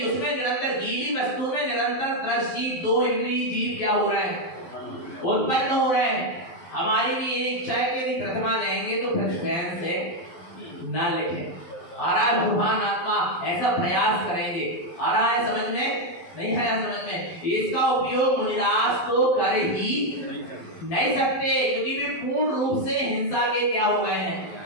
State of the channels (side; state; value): right; late; 12 ms